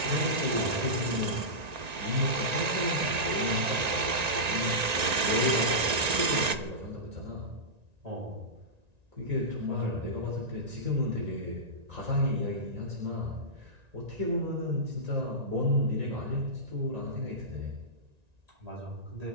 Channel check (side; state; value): left; late; 1.9 ms